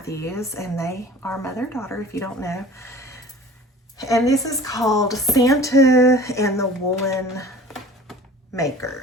and they are mother-daughter if you don't know. And this is called Santa and the Woolen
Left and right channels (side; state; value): both; normal; correlation 0.43